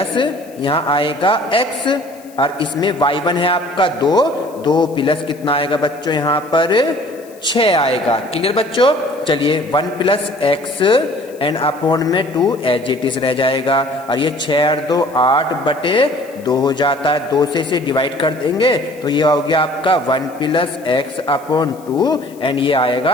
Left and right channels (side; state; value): left; noise; hiss, 25 dB below the sound